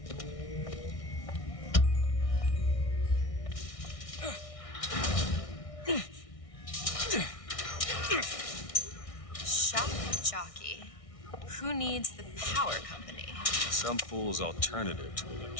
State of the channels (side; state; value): right; late; 1.6 ms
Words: Shock jockey. Who needs the power company? Some fool's alternative to